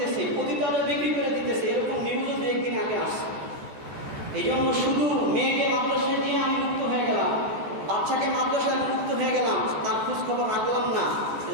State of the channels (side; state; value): left; late; 14 ms